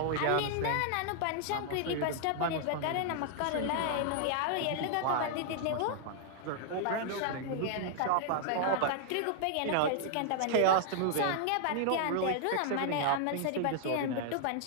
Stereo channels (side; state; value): both; different; correlation -0.01